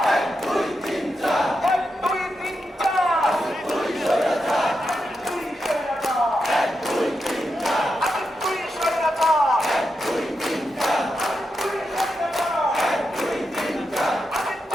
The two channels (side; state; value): both; normal; correlation 0.87